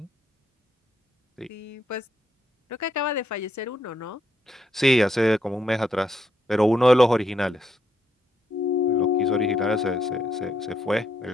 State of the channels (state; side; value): normal; both; correlation 0.77